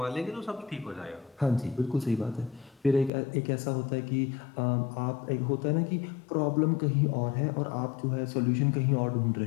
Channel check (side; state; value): right; drops out; at 3.1 s